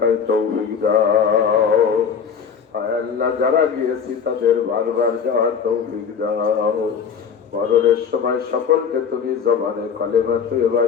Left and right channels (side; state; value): right; quieter; 6.7 dB